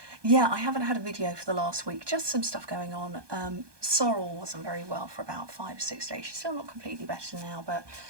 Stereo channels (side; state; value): left; late; 1.2 ms